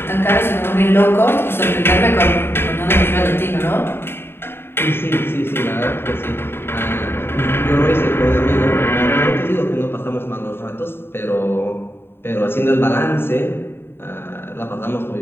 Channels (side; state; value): right; late; 0.11 ms